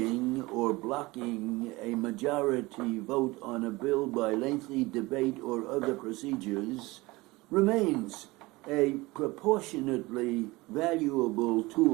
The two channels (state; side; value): quieter; left; 21.7 dB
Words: or blocking a majority vote on a bill by lengthy debate or other procedures, remains a proportionately valuable